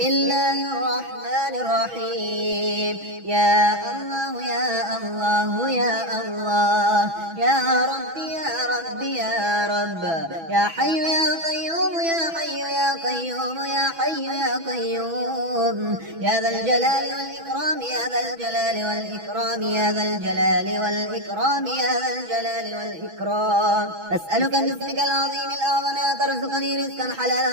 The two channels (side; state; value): left; late; 6.1 ms